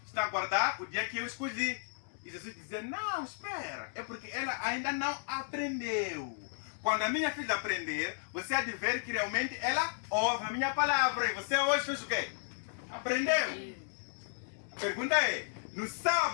está a guardar o dia que eu escolhi. E Jesus dizia, não, espera, é porque ela ainda não aprendeu. Quando a minha filha aprender, você há de ver que realmente ela ouve a minha palavra. E você hoje fez o quê? Aprendeu. A pergunta é, No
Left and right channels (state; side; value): silent; right; digital silence